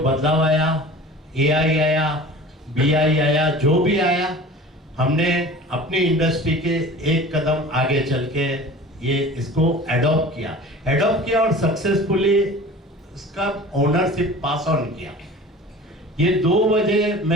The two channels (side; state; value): both; normal; correlation 0.40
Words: आया, एआई आया, बीआई आया, जो भी आया, हमने अपनी इंडस्ट्री के एक कदम आगे चल के ये इसको एडॉप्ट किया और सक्सेसफुली इसका ओनरशिप पास ऑन किया। ये 2 वजह